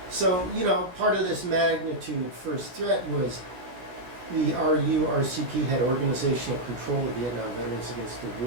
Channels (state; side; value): late; left; 16 ms